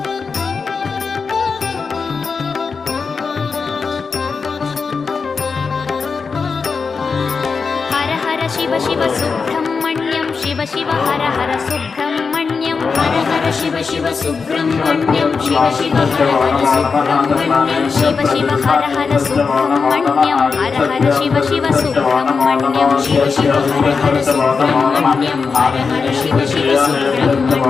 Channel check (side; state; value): right; quieter; 5.1 dB